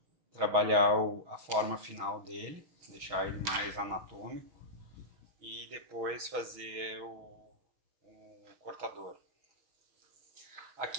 trabalhar a forma final dele, deixar ele mais anatômico e depois fazer o cortador.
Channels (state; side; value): late; left; 6.3 ms